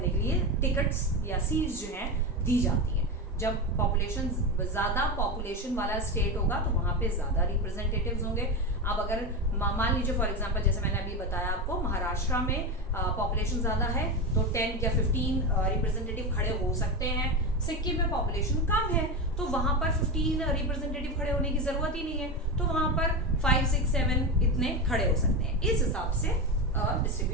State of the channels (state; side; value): normal; both; correlation 0.18